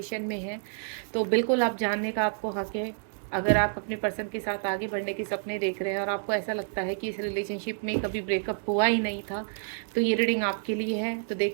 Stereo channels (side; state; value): left; silent; digital silence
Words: में हैं तो बिल्कुल आप जानने का आपको हक है। अगर आप अपने पर्सन के साथ आगे बढ़ने के सपने देख रहे हैं और आपको ऐसा लगता है कि इस रिलेशनशिप में कभी ब्रेकअप हुआ ही नहीं था, तो ये रीडिंग आपके लिए है। तो